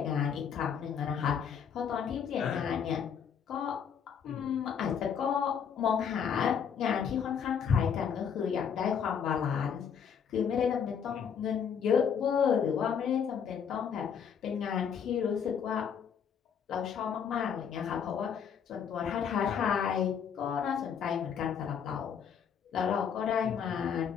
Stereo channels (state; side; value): quieter; right; 7.4 dB